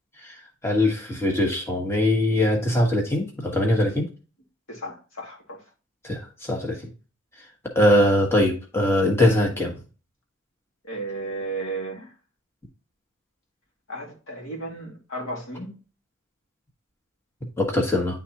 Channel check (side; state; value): both; normal; correlation 0.62